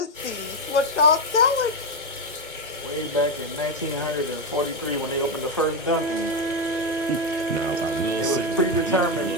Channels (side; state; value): both; normal; correlation 0.09